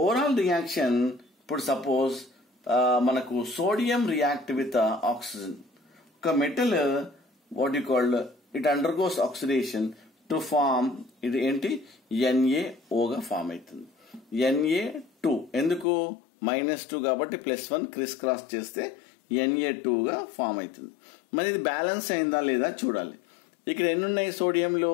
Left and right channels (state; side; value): drops out; right; at 15.9 s